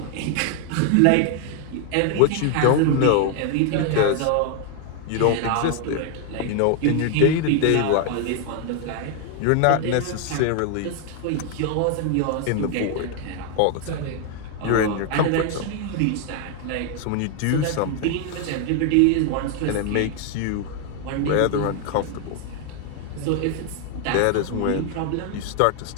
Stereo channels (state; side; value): different; both; correlation 0.00